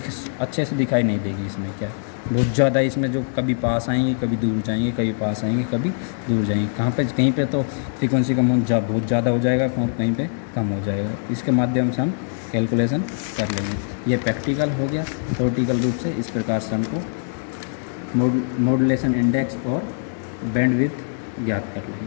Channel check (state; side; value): silent; right; digital silence